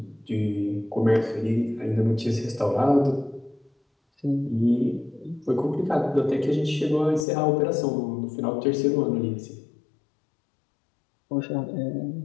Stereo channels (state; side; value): drops out; right; at 7.2 s